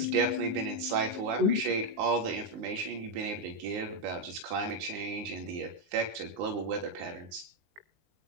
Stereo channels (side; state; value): left; late; 19 ms